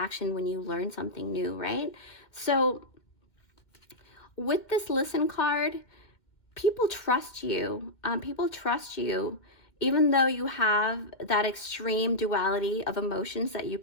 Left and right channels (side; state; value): right; late; 2.1 ms